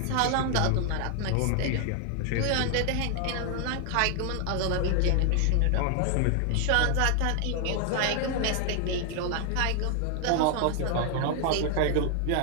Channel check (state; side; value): different; both; correlation 0.00